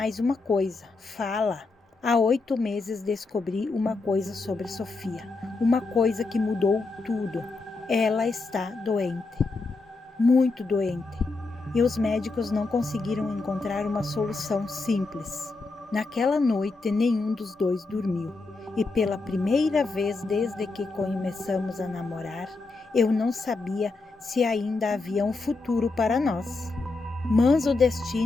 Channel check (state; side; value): quieter; right; 3.6 dB